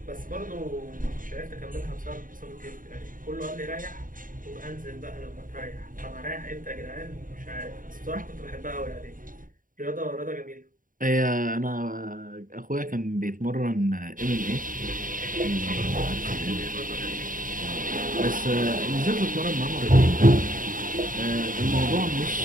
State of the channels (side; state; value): left; late; 0.39 ms